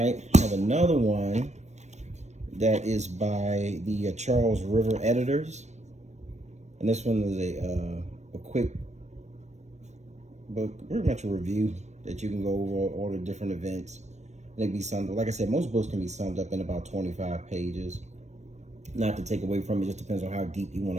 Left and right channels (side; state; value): left; late; 0.33 ms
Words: I have another one that is by the Charles River editors, and this one is a quick book, pretty much a review that you can go over all the different events. They can be summed, like I said, most books can be summed up in about 25 pages. Not to take away from it, just depends on how deep you